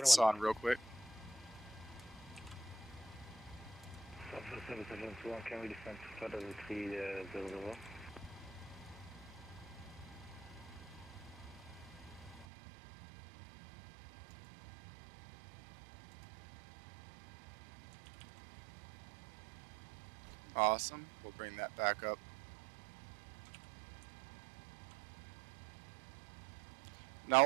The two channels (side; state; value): left; drops out; at 12.5 s